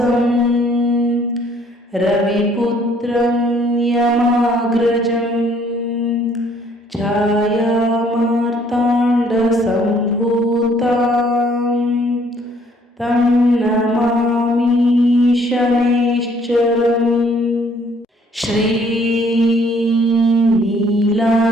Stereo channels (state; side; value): normal; both; correlation 0.62